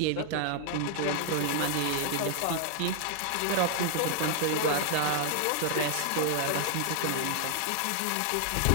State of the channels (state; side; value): different; both; correlation 0.00